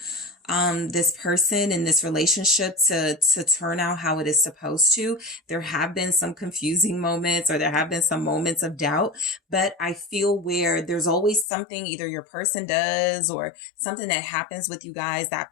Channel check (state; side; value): drops out; right; at 11.5 s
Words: this person in this relationship to turn out how it is supposed to. There have been some confusing moments, or there have been some moments of doubt, but I feel where there's always something either your person does or something that happens with you guys that